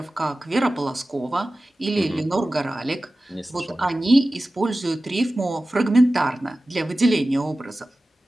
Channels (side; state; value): both; normal; correlation 0.96